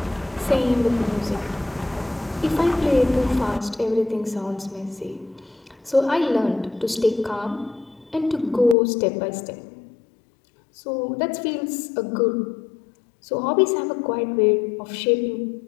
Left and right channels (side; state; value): right; drops out; at 8.8 s